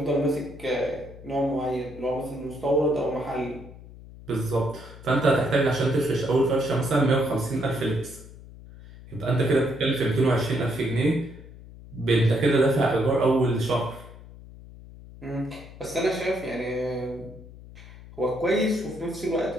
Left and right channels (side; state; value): left; noise; hum, 17 dB below the sound